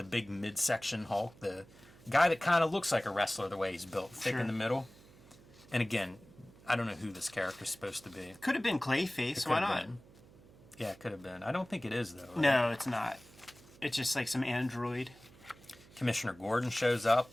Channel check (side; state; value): right; noise; hum, 23 dB below the sound